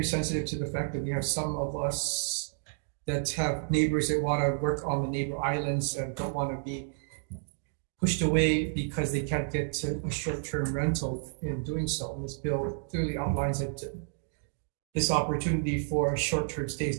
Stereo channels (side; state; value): left; silent; digital silence